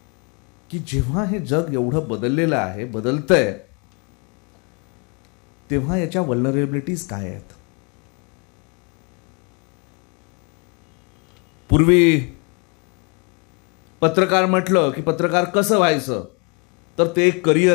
की जेव्हा हे जग एवढं बदललेलं आहे, बदलतंय, तेव्हा याच्या वल्नरेबिलिटीज काय आहेत. पूर्वी पत्रकार म्हटलं की पत्रकार कसं व्हायचं तर ते एक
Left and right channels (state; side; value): quieter; right; 33.9 dB